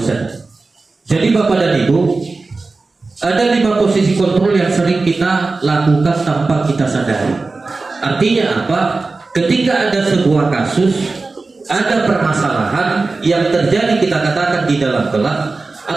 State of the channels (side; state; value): left; quieter; 3.7 dB